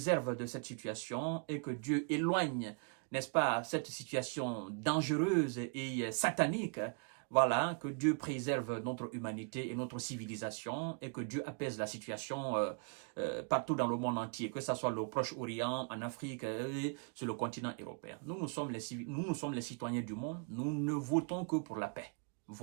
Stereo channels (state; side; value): quieter; left; 39.9 dB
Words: de cette situation et que Dieu éloigne, n'est-ce pas, cette situation dangereuse et satanique. Voilà, que Dieu préserve notre humanité et notre civilisation et que Dieu apaise la situation partout dans le monde entier, que ce soit au Proche-Orient, en Afrique et sur le continent européen. Nous sommes les citoyens du monde, nous ne votons que pour la paix.